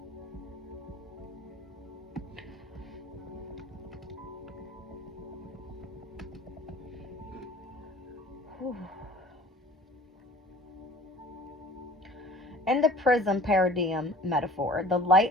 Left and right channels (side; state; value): both; normal; correlation 0.47